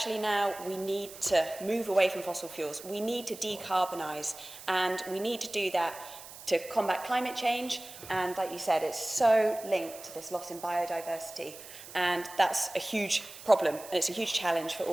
now we need to move away from fossil fuels. We need to decarbonise, and we need to do that to combat climate change, and like you said, it's so linked to this loss in biodiversity, and that's a huge problem, and it's a huge challenge for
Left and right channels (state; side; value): noise; right; hiss, 15 dB below the sound